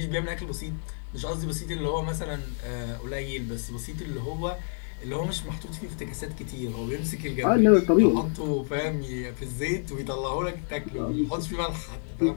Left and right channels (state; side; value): silent; right; digital silence